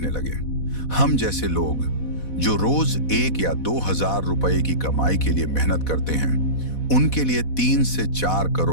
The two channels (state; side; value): late; right; 4.1 ms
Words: लगे। हम जैसे लोग जो रोज 1 या 2 हजार रुपए की कमाई के लिए मेहनत करते हैं, उनके लिए 3 से 4